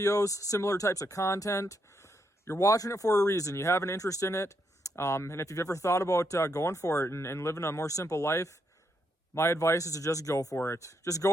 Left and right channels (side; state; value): both; normal; correlation 0.78